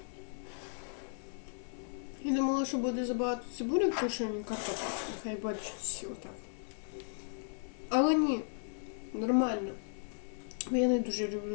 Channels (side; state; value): right; silent; digital silence